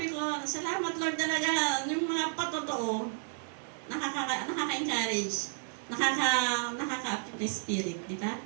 ko, salamat Lord talaga, yung mga patotoo, nakaka-encourage, nakaka-upkeep my spirit, di ba?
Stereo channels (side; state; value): left; silent; 56 dB below the other